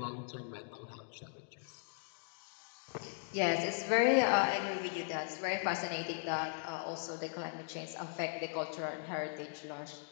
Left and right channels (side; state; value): right; silent; digital silence